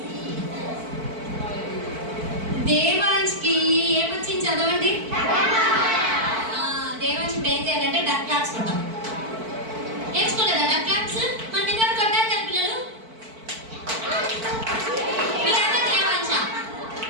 దేవాంశ్కి ఏమొచ్చింది చదవండి. దేవాంశ్ ఇప్పుడు ఏం చేయాలంటే డక్ క్లాప్స్ కొట్టాం. నేర్చుకోలేదా డక్ క్లాప్స్? మన దగ్గర కొట్టాలి కదా పిల్లలు. మీరంతా దేవాంశ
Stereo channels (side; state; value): left; late; 4.5 ms